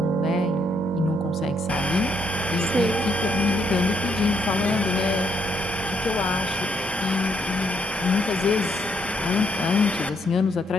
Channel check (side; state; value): both; normal; correlation 0.73